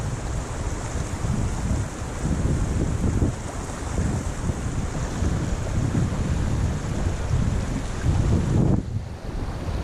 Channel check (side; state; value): both; identical; correlation 1.00